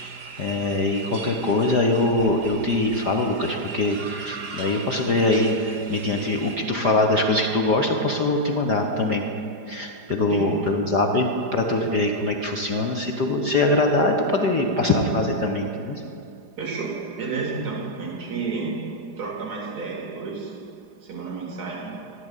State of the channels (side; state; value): left; late; 4.9 ms